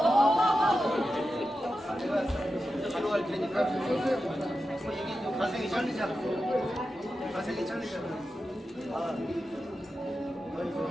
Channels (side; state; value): both; normal; correlation 0.91